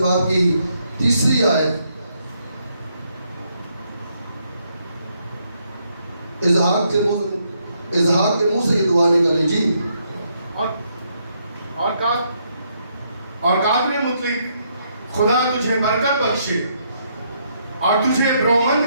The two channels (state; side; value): inverted; both; correlation -0.74